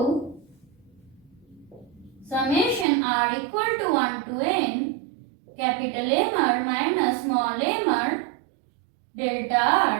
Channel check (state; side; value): drops out; left; at 2.9 s